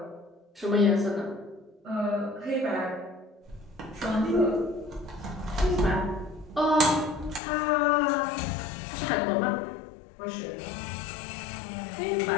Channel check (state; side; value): drops out; right; at 7.4 s